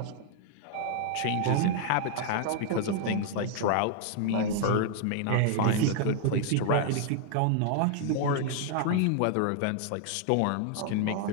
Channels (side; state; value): both; different; correlation 0.00